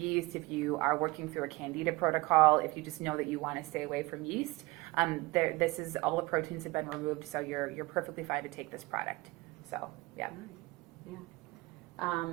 if you are working through a candida protocol, if you just know that you want to stay away from yeast. This is, all the proteins have been removed, so you're perfectly fine to take this product. So, yeah. Yeah. I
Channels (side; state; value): left; quieter; 22.3 dB